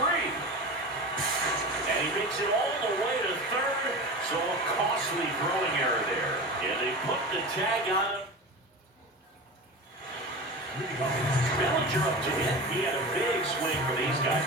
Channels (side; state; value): both; normal; correlation 0.30